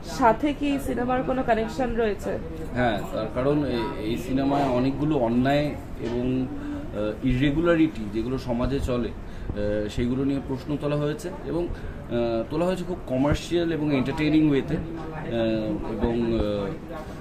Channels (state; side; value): identical; both; correlation 1.00